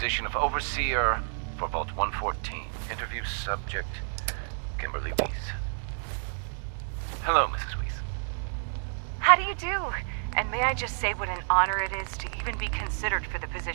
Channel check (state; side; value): silent; left; digital silence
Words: of Overseer for Vault 114. Interview subject, Kimberly Weiss. Hello, Mrs. Weiss. How do you do? And may I just say what an honor it is to even be considered for the